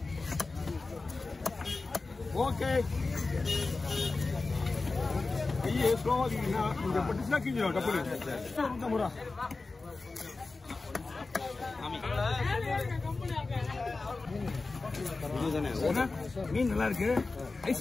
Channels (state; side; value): quieter; right; 3.6 dB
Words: ஓகே கையை ஸ்லோவாக்கிங்கன்னா இந்த பட்டுச்சுனா கிஞ்சிடும் டப்புனு. 50 ரூபா மீன் நல்லா இருக்கு.